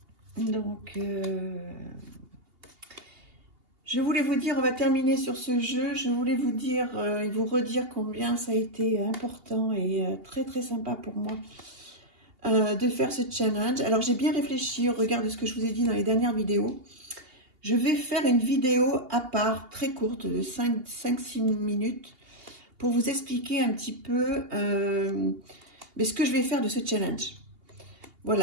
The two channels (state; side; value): late; left; 2.8 ms